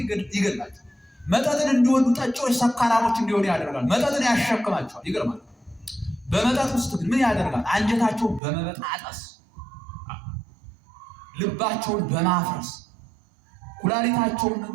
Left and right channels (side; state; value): left; drops out; at 8.4 s